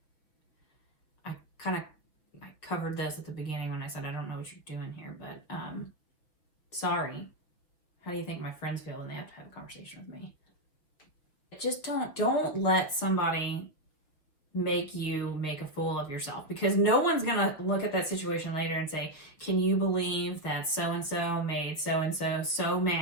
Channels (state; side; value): late; right; 6.2 ms